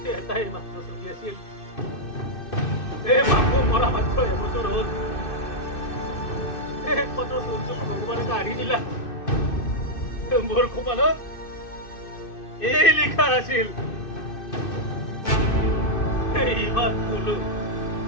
এটাই মাত্ৰ চলি আছিল এই মাকো মৰা মাত্ৰ এবছৰ হ'ল একমাত্ৰ চলটো ভগৱানে কাঢ়ি দিলা মোৰ কপালত এই লিখা আছিল ইমান কলো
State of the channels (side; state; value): right; late; 2.6 ms